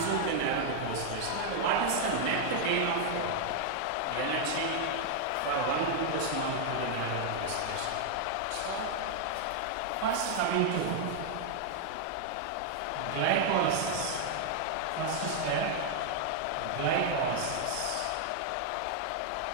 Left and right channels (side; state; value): both; different; correlation 0.00